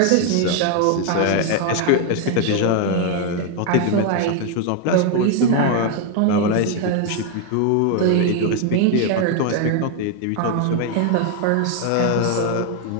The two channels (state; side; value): different; both; correlation 0.01